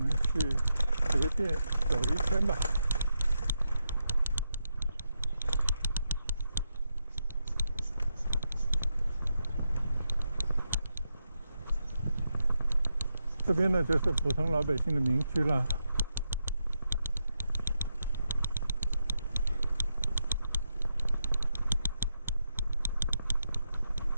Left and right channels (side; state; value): both; inverted; correlation -0.84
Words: 去随便走一圈吧。这边呢就是普通老百姓的民居了。